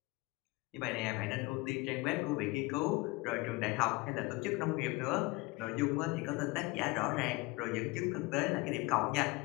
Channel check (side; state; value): right; quieter; 22.7 dB